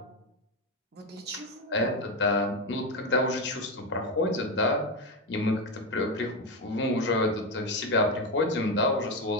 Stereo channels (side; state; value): both; normal; correlation 0.11